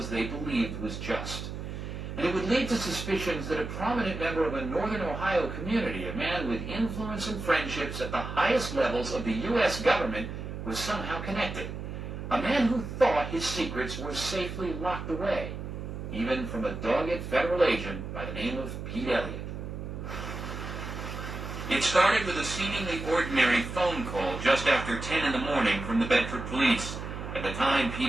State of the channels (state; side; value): noise; right; hum, 7 dB below the sound